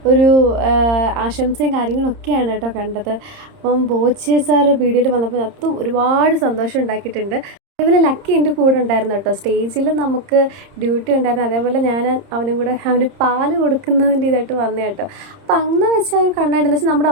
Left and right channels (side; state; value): left; late; 30 ms